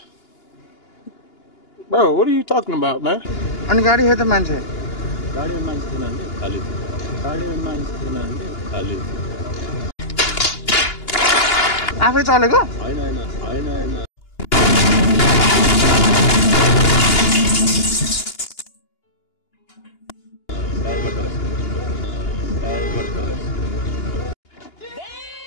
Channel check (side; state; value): right; late; 2.9 ms